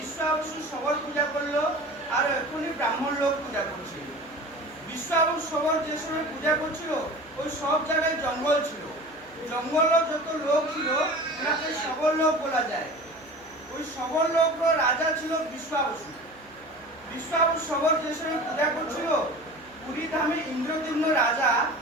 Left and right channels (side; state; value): right; noise; hum, 27 dB below the sound